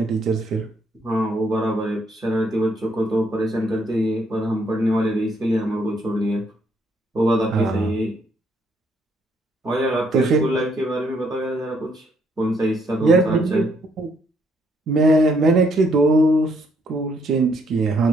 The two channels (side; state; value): both; normal; correlation 0.71